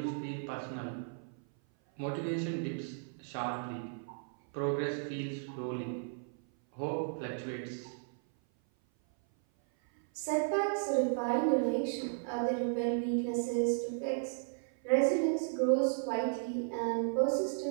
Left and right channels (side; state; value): left; silent; 55 dB below the other